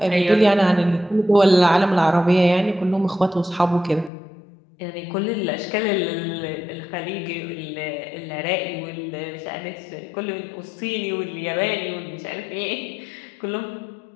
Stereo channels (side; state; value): right; drops out; at 4.1 s